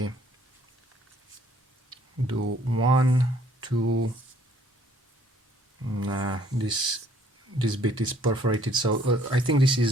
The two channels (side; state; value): both; normal; correlation 0.62